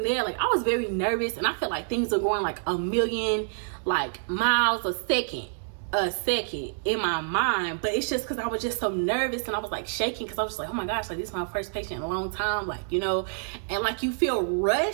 there. Like, I was very nervous, and I felt like things were going like a million like miles a second in my mind. But it's just because I was just so nervous, and I was like shaking, because I was just like, oh my gosh, like this is my first patient in a long time, like, you know. And like, you feel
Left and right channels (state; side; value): silent; left; digital silence